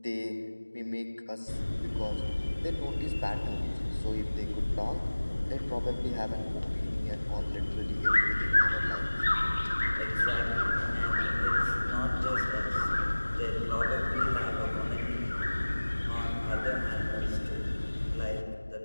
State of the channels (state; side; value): inverted; both; correlation -1.00